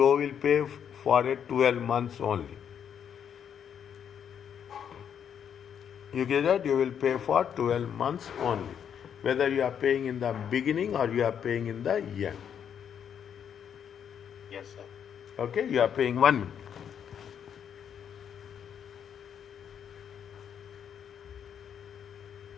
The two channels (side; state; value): right; quieter; 8.3 dB